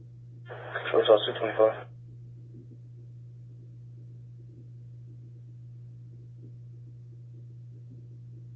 So it's also 225.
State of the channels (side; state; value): both; identical; correlation 1.00